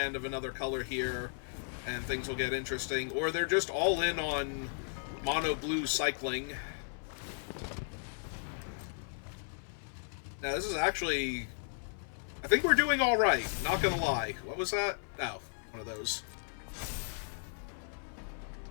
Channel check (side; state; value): right; silent; 54 dB below the other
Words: of another color here, and things will get interesting, or they're just all in on mono blue cycling. Now this is actually... I think we're doing alright, not gonna lie. What was that? Oh, one of those.